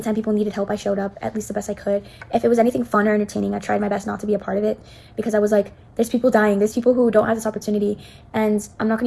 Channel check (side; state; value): both; identical; correlation 1.00